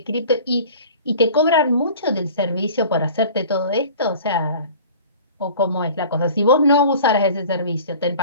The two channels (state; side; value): inverted; both; correlation -0.44